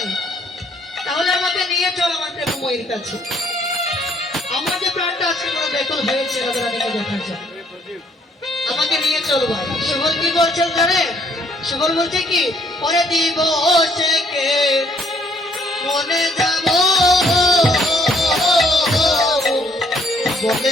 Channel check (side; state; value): both; normal; correlation 0.65